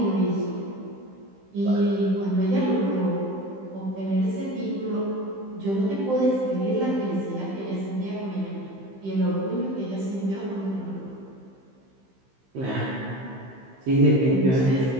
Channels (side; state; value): left; late; 15 ms